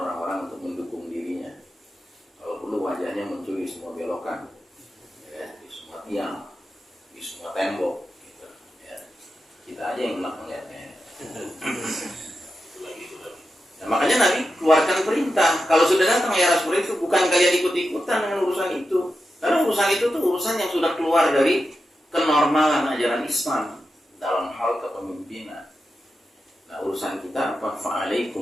untuk mendukung dirinya. Kalau perlu wajahnya muncul di semua belokan, ya, di semua tiang, di semua tembok. Gitu, ya. Kita aja yang enak melihatnya. Nah, makanya Nabi keluarkan perintah. Kalau sudah datang era seperti itu, bukan kalian ikut-ikutan dengan urusan itu. Karena urusan itu tuh urusan yang sudah keluar dari kenormalan ajaran Islam dalam hal kepemimpinan. Nah, urusan kita apa?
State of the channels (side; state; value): both; normal; correlation 0.89